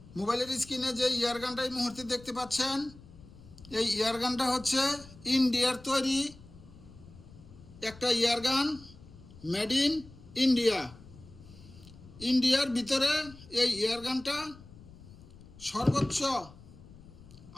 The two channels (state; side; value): noise; left; rumble, 20 dB below the sound